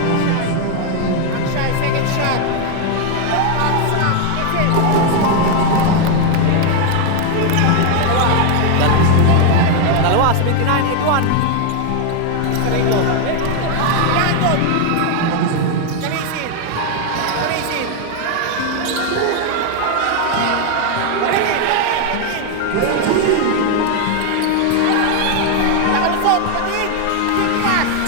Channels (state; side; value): different; both; correlation 0.01